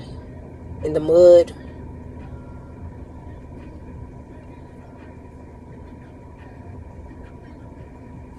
in the mud.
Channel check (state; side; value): identical; both; correlation 1.00